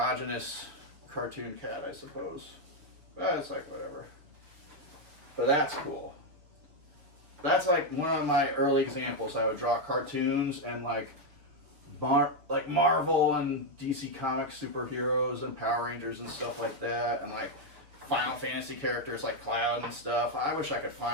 cartoon cat, I suppose. But it's like, whatever. But that's cool. That's like one of my early examples. I would draw cartoons and like Marvel and DC Comics superheroes and Power Rangers and stuff like that, and like Final Fantasy characters like Cloud and stuff. I wish I could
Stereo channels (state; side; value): late; left; 6.6 ms